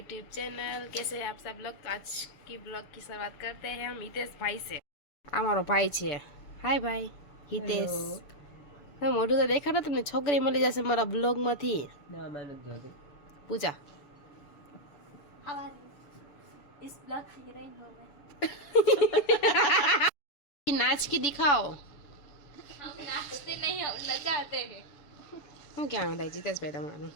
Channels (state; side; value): late; right; 7.0 ms